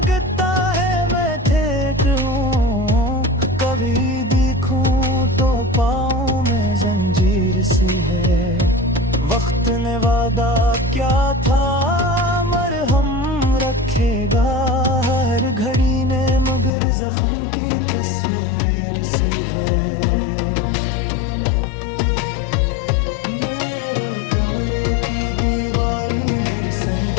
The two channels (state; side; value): drops out; right; at 16.7 s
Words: है मैं ठेठ हूँ, कभी देखूं तो पाँव में जंजीर सी है। वक्त ने वादा क्या था मरहम रखेगा, हर घड़ी ने मगर जख्म की तस्वीर सी है। मेरे कमरे की दीवारी भी